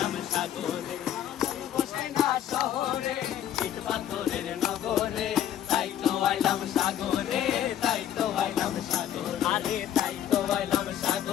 সাগরে। মন বসে না শহরে, ইট পাথরের নগরে, তাই তো আইলাম সাগরে, তাই তো আইলাম সাগরে। আরে তাই তো আইলাম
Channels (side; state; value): right; quieter; 10.7 dB